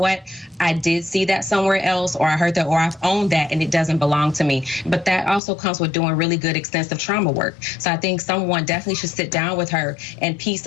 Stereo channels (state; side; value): drops out; right; at 5.4 s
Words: I did see that somewhere else, or I heard that, or I've owned that and it doesn't belong to me. But that also comes with doing really good extensive trauma work. So I think someone definitely should sit down with her and piece